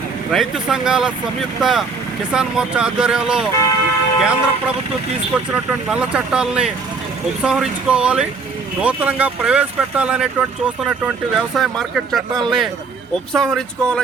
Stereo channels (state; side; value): quieter; left; 4.5 dB